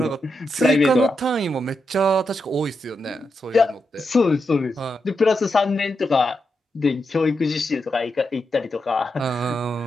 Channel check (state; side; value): normal; both; correlation 0.85